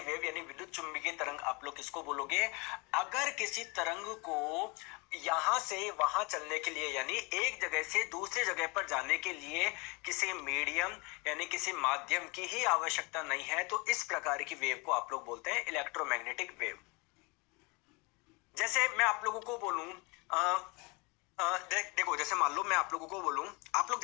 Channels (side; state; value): right; quieter; 28.4 dB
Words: वेव यानी विद्युत चुंबकीय तरंग आप लोग किसको बोलोगे? अगर किसी तरंग को यहां से वहां चलने के लिए यानी एक जगह से दूसरी जगह पर जाने के लिए किसी मीडियम यानी किसी माध्यम की ही आवश्यकता नहीं है, तो इस प्रकार की वेव को आप लोग बोलते हैं इलेक्ट्रोमैग्नेटिक वेव। जैसे मैं आप लोगों को बोलूं, देखो जैसे मान लो मैं आप लोगों को बोलूं, आप लोग